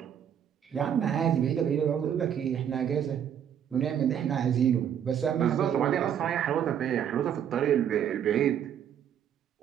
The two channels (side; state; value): left; quieter; 9.0 dB